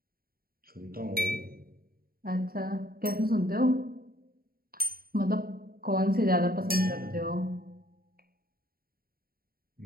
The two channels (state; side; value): late; left; 0.43 ms